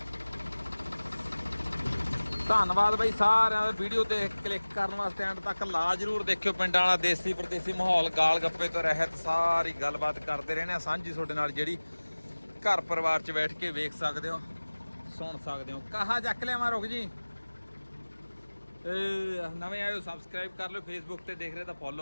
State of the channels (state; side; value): inverted; both; correlation -1.00